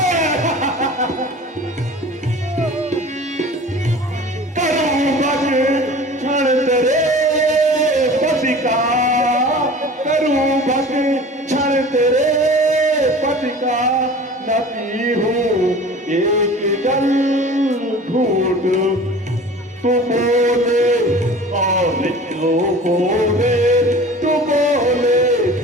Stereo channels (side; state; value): both; normal; correlation 0.41